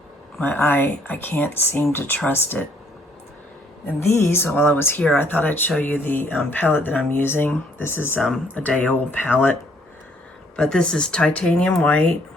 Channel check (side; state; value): both; normal; correlation 0.65